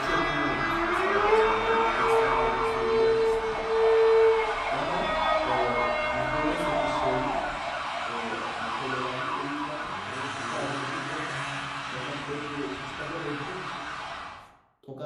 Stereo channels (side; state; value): both; identical; correlation 1.00